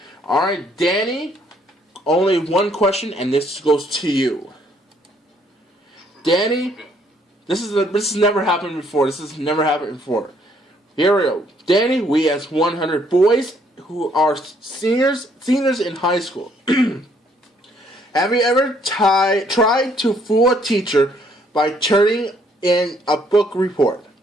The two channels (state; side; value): normal; both; correlation 0.67